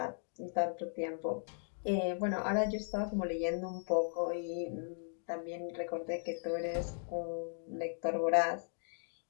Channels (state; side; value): silent; right; digital silence